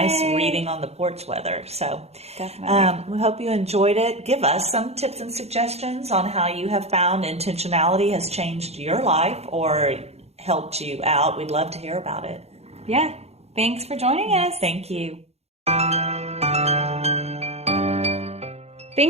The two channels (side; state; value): left; late; 0.30 ms